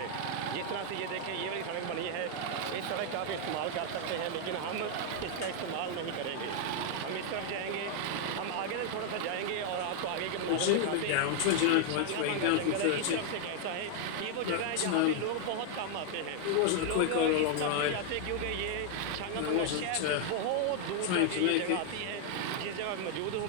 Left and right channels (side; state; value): both; different; correlation 0.00